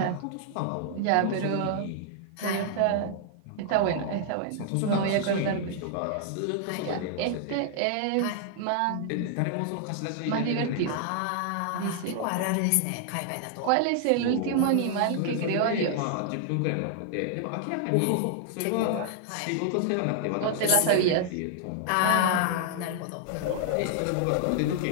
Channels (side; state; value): both; different; correlation -0.01